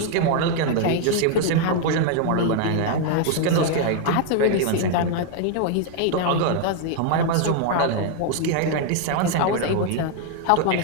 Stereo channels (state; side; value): different; both; correlation 0.00